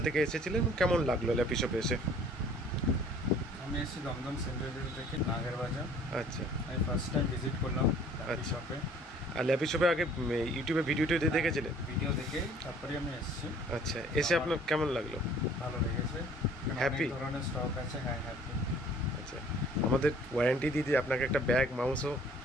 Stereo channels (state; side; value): normal; both; correlation 0.54